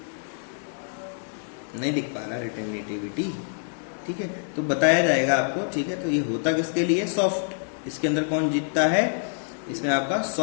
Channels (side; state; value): right; silent; digital silence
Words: नहीं दिख पा रहा रिटेनिटिविटी। ठीक है, तो बताया जाएगा आपको। ठीक है, तो ये होता किसके लिए, सॉफ्ट, इसके अंदर कौन जीतता है, इसमें आपका